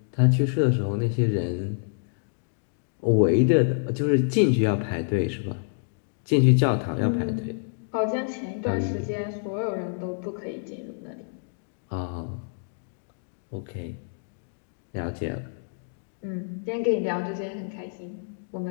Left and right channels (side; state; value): right; silent; digital silence